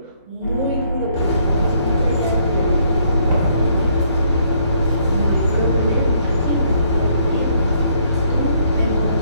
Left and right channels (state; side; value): inverted; both; correlation -0.67